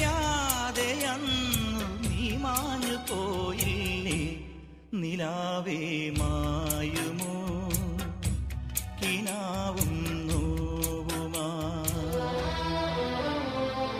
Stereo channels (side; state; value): both; identical; correlation 1.00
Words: അന്നു നീ മാഞ്ഞു പോയില്ലേ. നിലാവേ മായുമോ കിനാവും നോവുമാ.